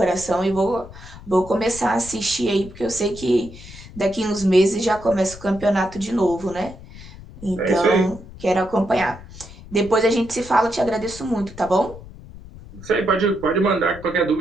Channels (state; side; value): noise; left; rumble, 17 dB below the sound